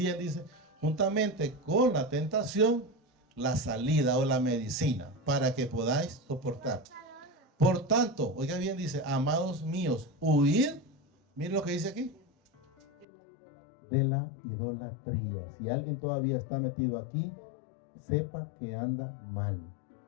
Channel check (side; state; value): right; drops out; at 13.1 s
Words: dice, juntamente con la tentación, la salida o la medicina, para que podáis soportar. Por tanto, oiga bien, dice, amados míos, huid, miren lo que dice aquí, de la idolatría. Si alguien todavía está metido aquí, sepa que anda mal.